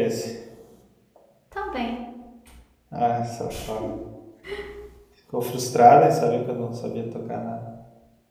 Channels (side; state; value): both; identical; correlation 1.00